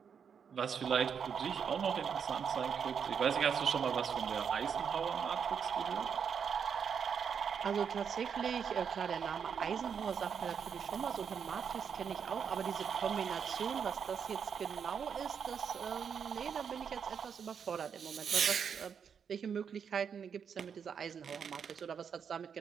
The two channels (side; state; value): left; quieter; 7.1 dB